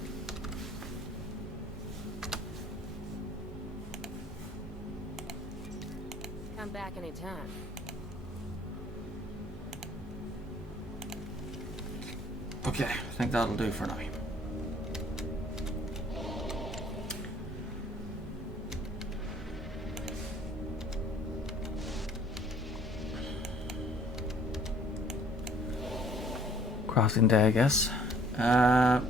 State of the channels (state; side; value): normal; both; correlation 0.57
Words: Come back anytime. Okay, I think that'll do for now. Crossing day, I guess.